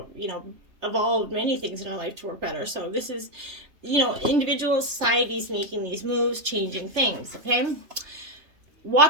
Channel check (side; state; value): left; late; 3.3 ms